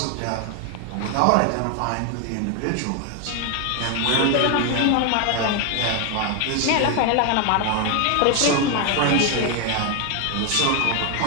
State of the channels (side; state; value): both; different; correlation 0.01